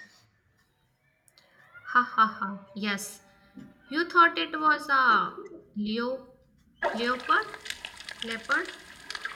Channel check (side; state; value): both; identical; correlation 1.00